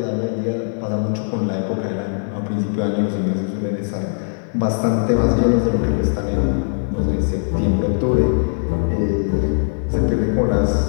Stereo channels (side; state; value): right; silent; digital silence